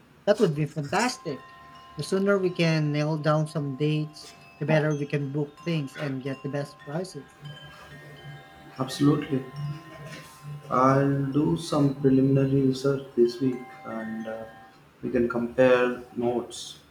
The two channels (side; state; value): both; identical; correlation 1.00